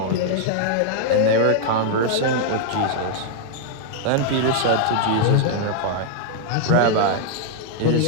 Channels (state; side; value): different; both; correlation 0.00